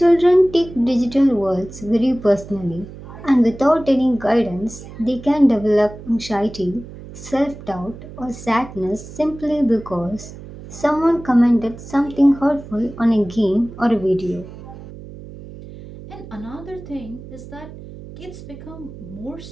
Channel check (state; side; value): noise; right; hum, 15 dB below the sound